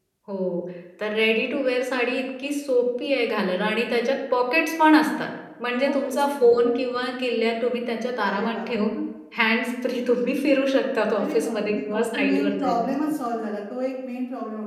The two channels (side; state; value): both; identical; correlation 1.00